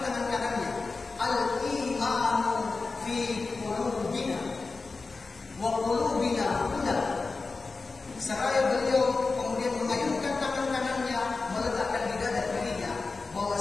tangan kanannya, al-imanu fi qulubina wa qulubina huna. Seraya beliau kemudian mengayunkan tangan kanannya, meletakkan di dada kirinya,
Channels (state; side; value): quieter; right; 4.0 dB